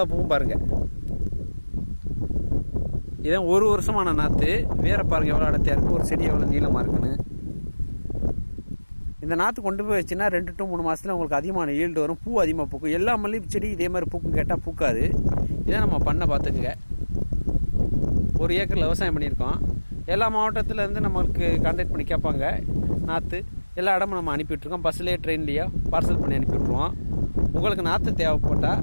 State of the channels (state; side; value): inverted; both; correlation -1.00